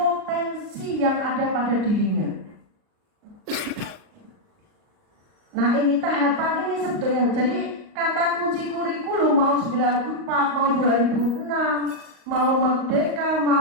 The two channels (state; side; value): late; left; 38 ms